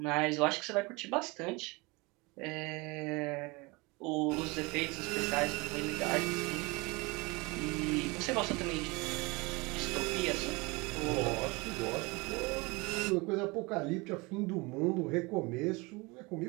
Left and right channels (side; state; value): left; quieter; 25.6 dB